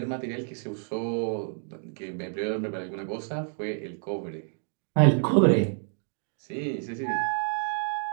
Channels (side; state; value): left; silent; 57 dB below the other